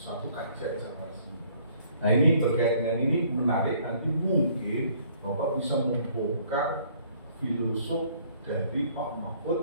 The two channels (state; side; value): inverted; both; correlation -0.60